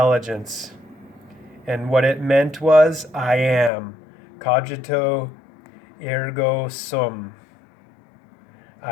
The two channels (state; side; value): drops out; right; at 3.7 s